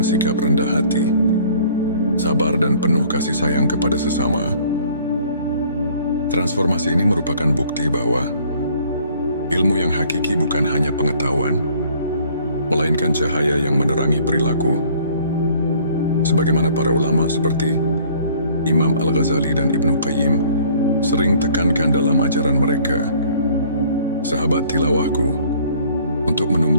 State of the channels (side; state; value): both; inverted; correlation -0.56